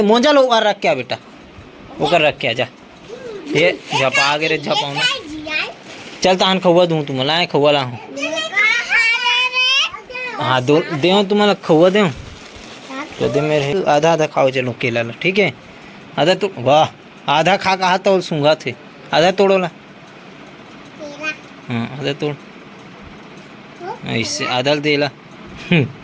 लो रख क्या बेटा वो कर रख क्या जा ये झपा गे रे झपाऊना चल तहन खौआ दूँ तुम्हारा आए खौआ ला हूँ हाँ दो दे तुम्हारा खौआ दे तो दे मेरे आधा खाओ चलो केला ला ठीक है आधा तो वाह आधा खा कहा तो सूंघा थे आधा तोड़ो ला हाँ आधा तोड़ ऐसे आधा देला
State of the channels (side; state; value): both; identical; correlation 1.00